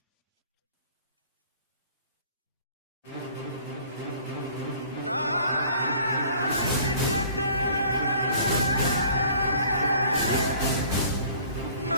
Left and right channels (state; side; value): inverted; both; correlation -0.51